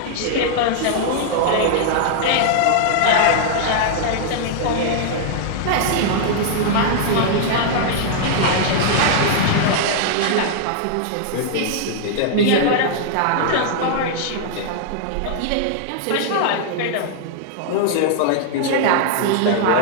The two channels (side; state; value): both; different; correlation -0.01